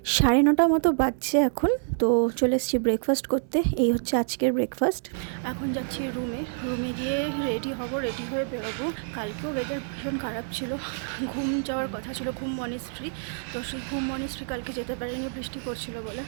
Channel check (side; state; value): left; silent; 56 dB below the other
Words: 9:30 মতো বাজছে এখন। তো চলে এসেছি ব্রেকফাস্ট করতে। এই হচ্ছে আজকের ব্রেকফাস্ট। এখন যাচ্ছি রুমে গিয়ে রেডি হব, রেডি হয়ে বেরোবো। কালকেও ওয়েদার ভীষণ খারাপ ছিল, ঘুম যাওয়ার কথা ছিল, ঘুম মনেস্ট্রি। তো সেই ঘুম মনেস্ট্রি কালকে যেতে পারিনি, বৃষ্টি পড়ছিল বলে।